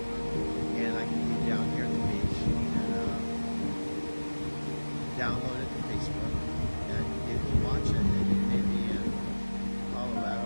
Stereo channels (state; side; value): inverted; both; correlation -1.00